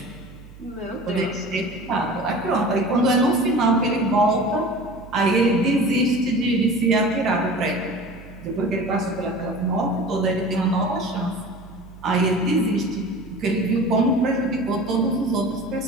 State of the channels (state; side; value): noise; right; hum, 19 dB below the sound